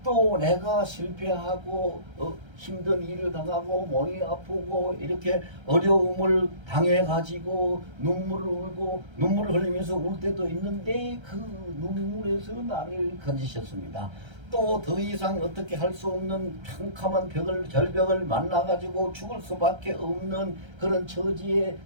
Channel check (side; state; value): left; late; 1.3 ms